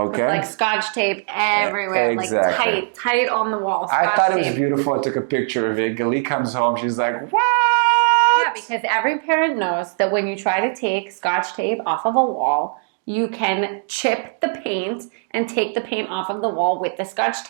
Like scotch tape everywhere. Exactly. Like tight on the wall. I thought it was beautiful. I took a picture of it. Galit comes home. She's like, what? Yeah, because every parent knows that when you try to take scotch tape off of a wall, you can chip the paint and take the paint off of the wall with the scotch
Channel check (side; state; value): left; silent; 58 dB below the other